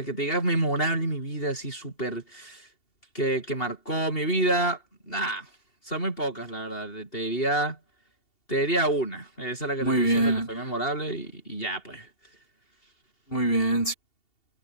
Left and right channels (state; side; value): late; right; 2.7 ms